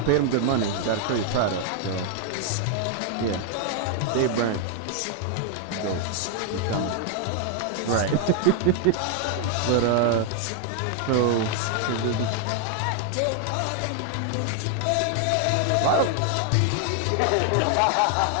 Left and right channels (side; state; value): both; different; correlation 0.00